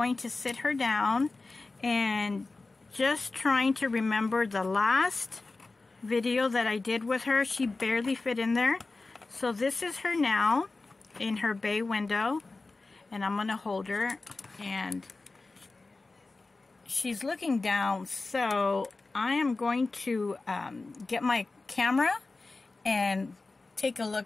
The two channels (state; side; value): quieter; right; 3.5 dB